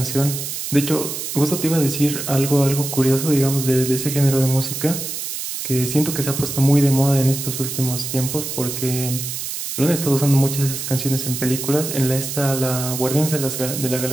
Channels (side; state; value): right; noise; hiss, 5 dB below the sound